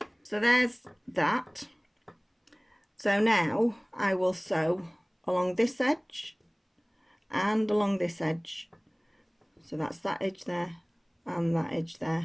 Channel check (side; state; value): both; identical; correlation 1.00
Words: So there's that. So now I will sew along this edge and along this edge. So that's that edge there and that edge